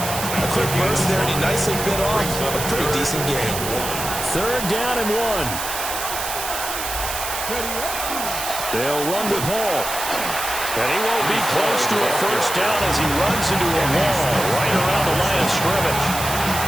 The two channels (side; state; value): right; noise; hiss, 5 dB below the sound